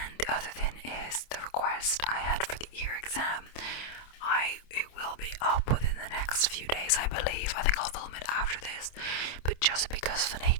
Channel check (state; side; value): late; right; 27 ms